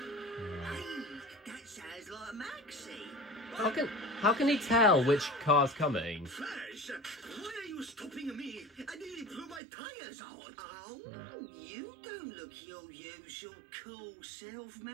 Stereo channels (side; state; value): left; drops out; at 9.6 s